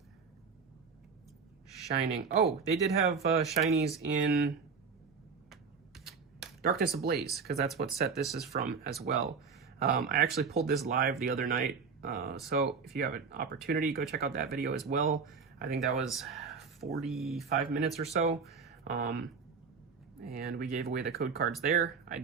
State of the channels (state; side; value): quieter; left; 5.4 dB